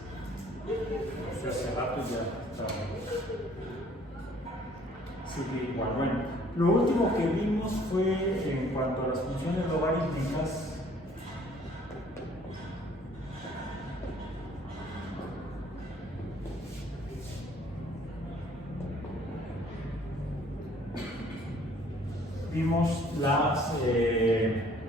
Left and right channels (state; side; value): normal; both; correlation 0.58